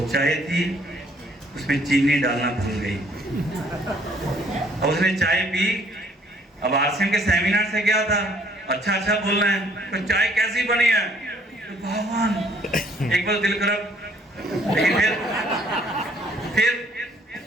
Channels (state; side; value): normal; both; correlation 0.62